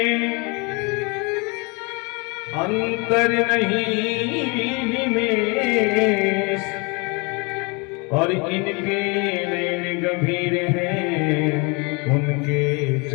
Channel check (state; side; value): quieter; right; 30.0 dB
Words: अंतर नहीं निमेष, और इनके नैन गंभीर हैं, उनके